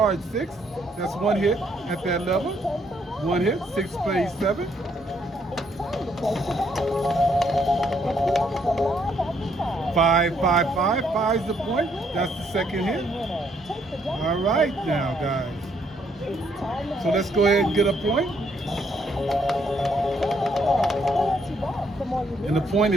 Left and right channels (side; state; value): both; normal; correlation 0.71